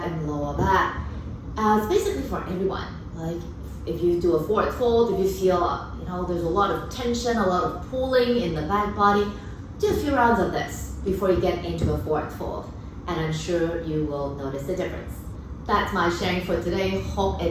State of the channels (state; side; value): identical; both; correlation 1.00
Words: and lower back. It's basically for everyone. Like if you do a forward fold, if you feel, there's a lot of tension, a lot of pulling in the back body, do a few rounds of this before you get into a forward fold. And I'm sure you will notice the difference. That's my sharing for today. Hope